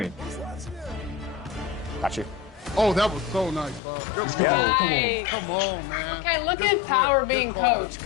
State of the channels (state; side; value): drops out; right; at 3.8 s